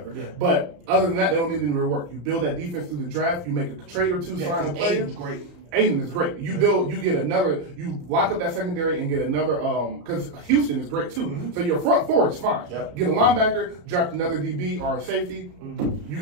Yeah. But other than that, they don't need any real work. You build that defense through the draft. You make a trade or two, sign a player. Aiden's great. Aiden is great. You lock up that secondary and get another, because Houston is great too. Mm-hmm. So your front four is fine. Yep. Get a linebacker, draft another DB or a safety. Mm-hmm. You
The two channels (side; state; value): left; late; 34 ms